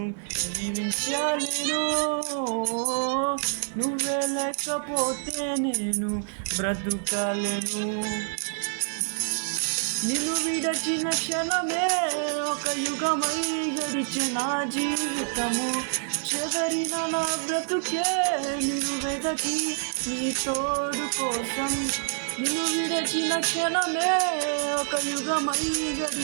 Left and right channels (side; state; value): left; silent; digital silence